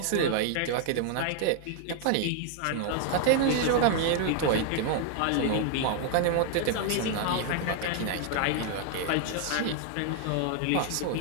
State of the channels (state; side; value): different; both; correlation 0.00